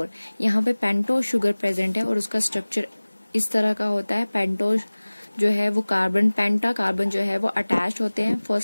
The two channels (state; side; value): inverted; both; correlation -1.00